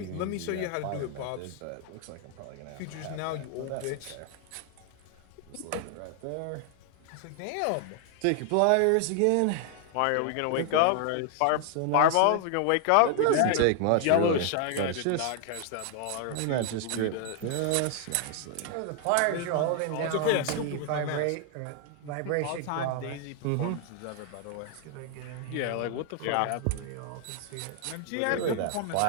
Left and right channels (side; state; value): both; different; correlation 0.00